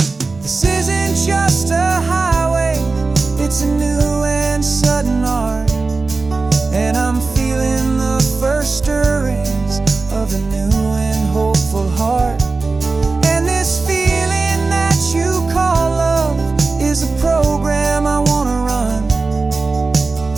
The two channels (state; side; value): quieter; left; 3.8 dB